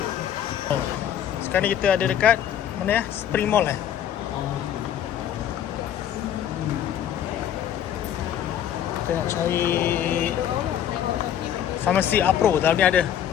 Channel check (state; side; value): quieter; right; 10.1 dB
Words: Sekarang ni kita ada dekat mana ya? Spring Mall Kita nak cari Farmasi Apro, dalam ni ada.